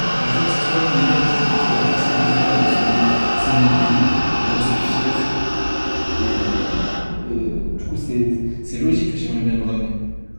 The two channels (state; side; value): inverted; both; correlation -1.00